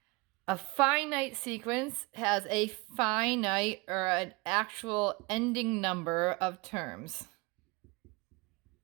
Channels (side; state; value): left; quieter; 25.6 dB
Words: A finite sequence has a finite or an actual ending number of terms.